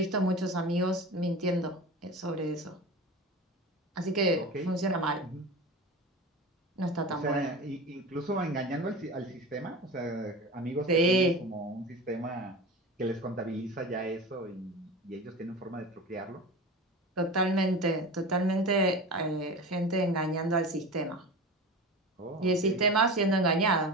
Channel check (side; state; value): both; normal; correlation 0.31